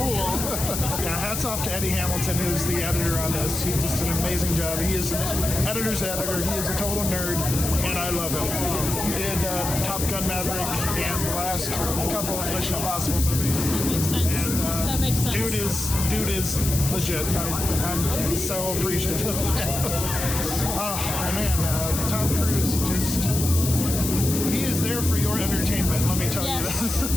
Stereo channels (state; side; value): noise; left; hiss, 4 dB below the sound